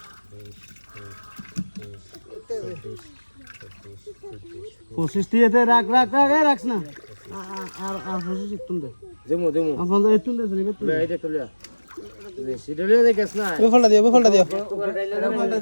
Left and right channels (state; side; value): inverted; both; correlation -1.00